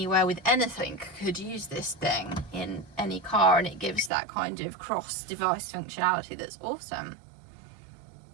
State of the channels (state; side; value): drops out; left; at 4.1 s